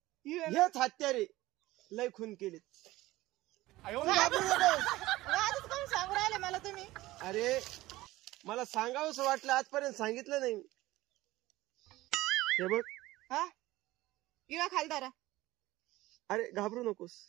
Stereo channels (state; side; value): quieter; left; 17.8 dB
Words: हेच हत्यारे लय खून केलेत. आजच कोण सांगू राहिले मला तुम्ही? अरे मला सांगावंसं वाटलं, आजपर्यंत सांगितलं नाही. हे बघ. हा इवा खालदारा. अरे घाबरू नकोस,